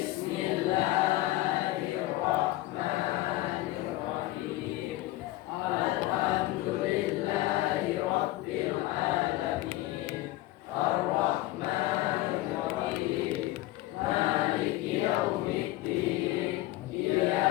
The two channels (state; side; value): quieter; right; 17.2 dB